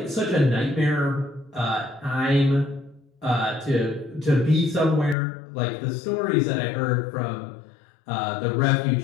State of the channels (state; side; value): drops out; right; at 5.2 s